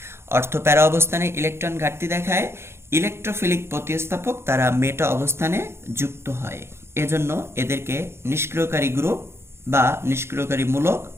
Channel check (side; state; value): left; late; 0.12 ms